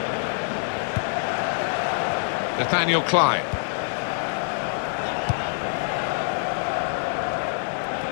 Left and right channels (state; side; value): silent; right; 62 dB below the other